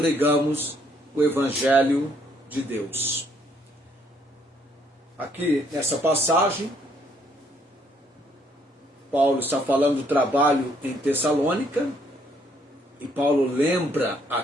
o Evangelho de Deus. Aqui nessa passagem, Paulo está falando do trabalho em Tessalônica, e Paulo lembra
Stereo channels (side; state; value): both; normal; correlation 0.68